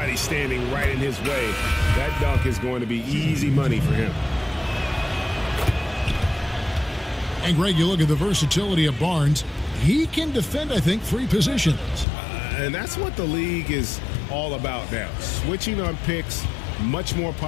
standing right in his way. That dunk is going to be easy money for him. And, Greg, you look at the versatility of Barnes. He can defend, I think, 3 positions. And that's what the league is all about now. Switching on picks, much more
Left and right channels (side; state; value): right; drops out; at 12.1 s